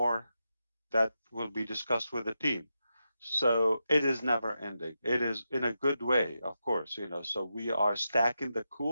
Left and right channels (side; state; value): both; inverted; correlation -0.88